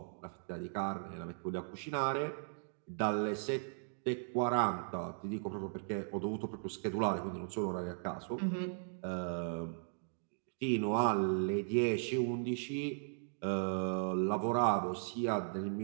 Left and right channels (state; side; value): silent; left; digital silence